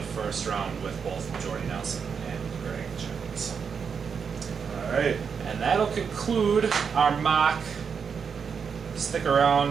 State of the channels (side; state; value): left; quieter; 6.3 dB